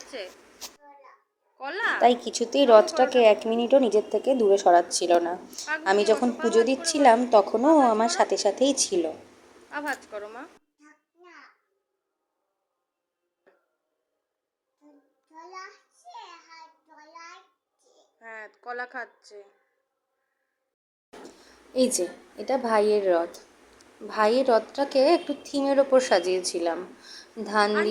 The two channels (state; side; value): identical; both; correlation 1.00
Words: তাই কিছুতেই রথটাকে 1 মিনিটও নিজের থেকে দূরে সরাচ্ছিল না। আমি যখন পুজো দিচ্ছিলাম তখনও ও আমার সাথে সাথেই ছিল। হ্যাঁ, কলা খাচ্ছে। এই যে, এটা ভাইয়ের রথ। ভাইয়ের রথটাকে একটু থিমের ওপর সাজিয়েছিলাম, ধান